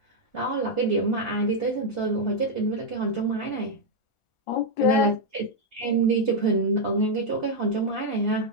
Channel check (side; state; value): right; late; 1.4 ms